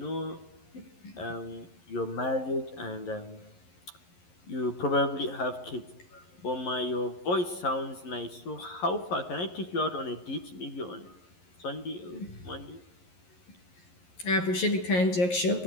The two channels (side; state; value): right; late; 11 ms